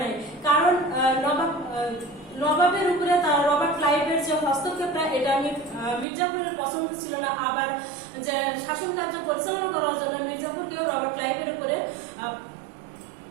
নাই, কারণ নবাবের উপরে রবার্ট ক্লাইভের যে হস্তক্ষেপটা এটা মীর জাফরের পছন্দ ছিল না। আবার যে শাসন কার্য পরিচালনা করার জন্য মীর জাফরকেও রবার্ট ক্লাইভের উপরে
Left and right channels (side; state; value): left; drops out; at 6.1 s